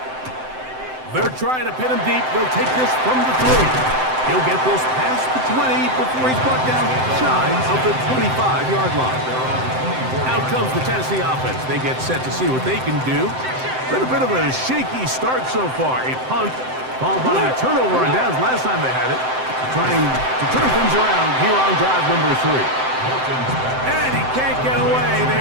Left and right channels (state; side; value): late; left; 7.8 ms